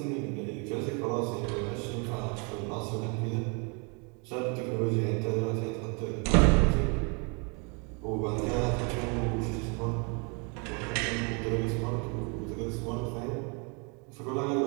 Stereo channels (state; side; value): quieter; left; 33.8 dB